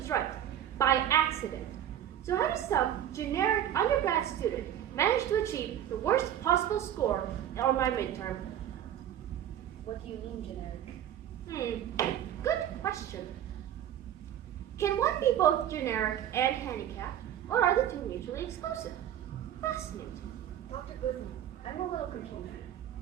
right, by accident. So how does some generic undergrad student manage to achieve the worst possible score on my midterm? What do you mean generic? Good question. Can one be both generic and handicapped, or are the two mutually exclusive? Fascinating. Dr. Guzman, I'm a little confused.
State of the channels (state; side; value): quieter; left; 10.8 dB